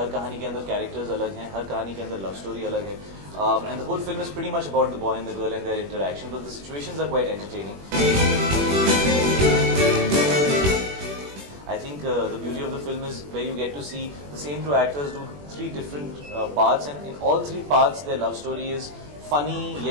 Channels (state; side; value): late; left; 21 ms